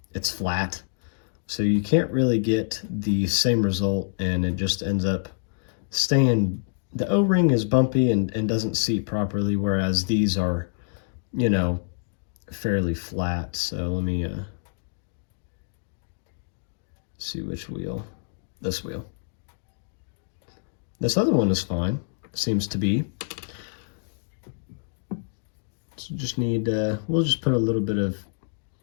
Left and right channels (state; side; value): silent; right; 59 dB below the other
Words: flat, so you can't really get the same result, and it just ends up staying. The O-ring is bumpy and doesn't seat properly, whereas these are, you know, fairly flat. So let me see which wheel. This wheel. This other one is fine, seems to be. So just need, we'll just put a little bit of